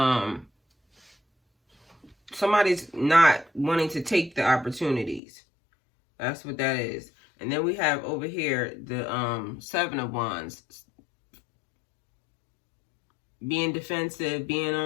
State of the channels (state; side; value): drops out; right; at 5.2 s